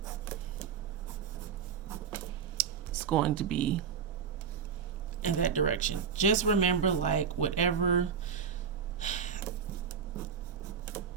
it's going to be in that direction. Just remember, like, whatever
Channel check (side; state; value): left; quieter; 6.7 dB